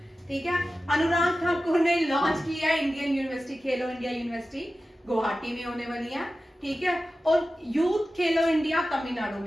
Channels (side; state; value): both; normal; correlation 0.94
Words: ठीक है। अनुराग ठाकुर ने लॉन्च किया इंडियन यूनिवर्सिटी, खेलो इंडिया यूनिवर्सिटी गुवाहाटी में होने वाली है, ठीक है। और यूथ खेलो इंडिया तमिलनाडु